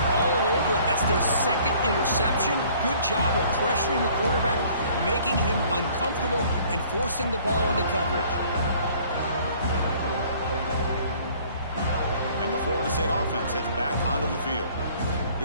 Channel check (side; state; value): both; inverted; correlation -0.56